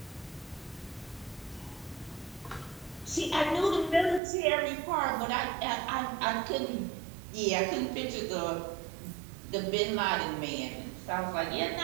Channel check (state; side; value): drops out; left; at 4.2 s